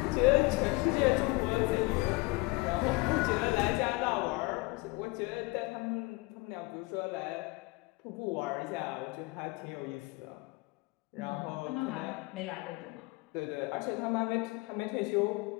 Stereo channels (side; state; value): right; quieter; 24.1 dB